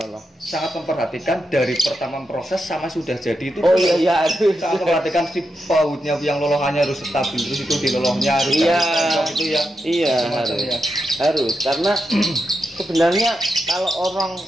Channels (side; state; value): both; normal; correlation 0.86